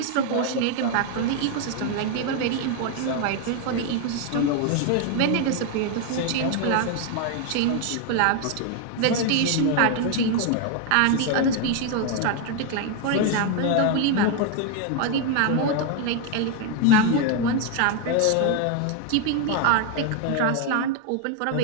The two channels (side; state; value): both; different; correlation 0.01